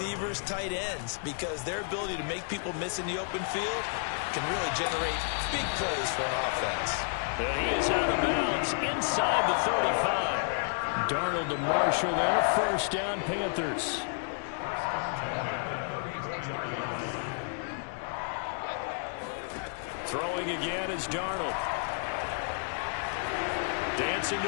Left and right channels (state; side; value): silent; right; 57 dB below the other